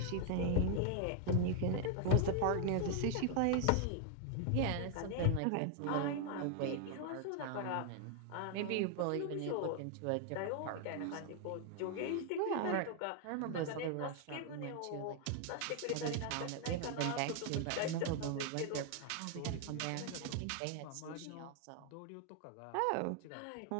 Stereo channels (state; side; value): different; both; correlation 0.00